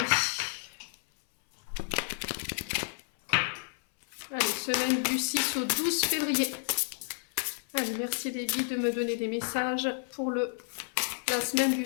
Allez, semaine du 6 au 12 février. Allez, merci les guides de me donner des messages pour la semaine du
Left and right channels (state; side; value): silent; right; 57 dB below the other